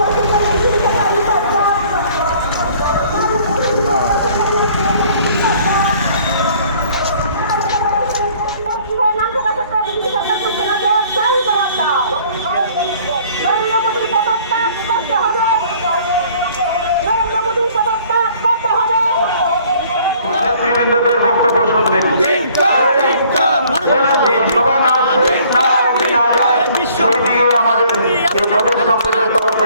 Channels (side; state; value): both; inverted; correlation -0.57